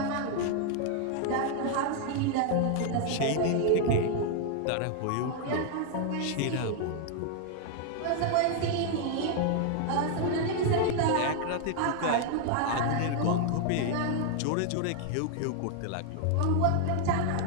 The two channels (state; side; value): different; both; correlation 0.00